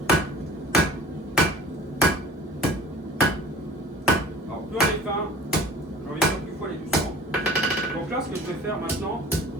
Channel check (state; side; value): normal; both; correlation 0.44